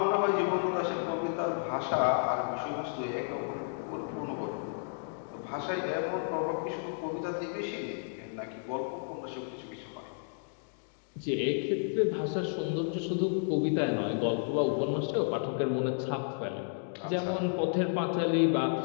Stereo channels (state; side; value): silent; right; digital silence